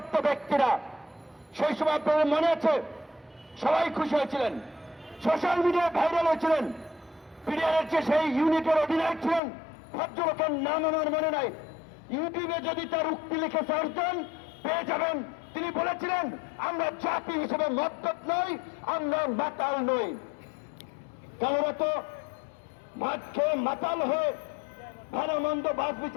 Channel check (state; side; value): drops out; right; at 9.4 s